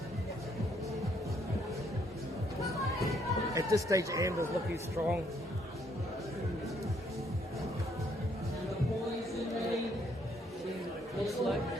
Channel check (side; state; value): both; normal; correlation 0.69